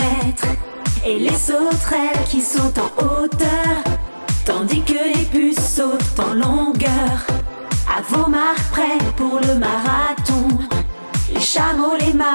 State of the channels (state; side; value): inverted; both; correlation -1.00